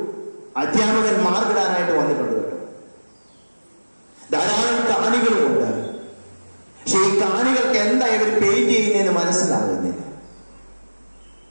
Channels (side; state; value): both; inverted; correlation -1.00